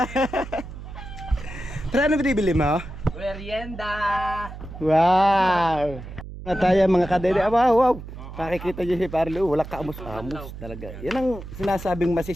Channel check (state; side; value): noise; right; hum, 12 dB below the sound